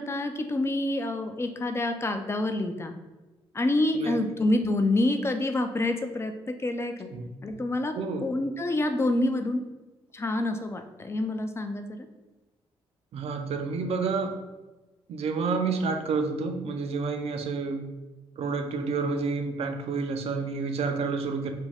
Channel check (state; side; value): normal; both; correlation 0.70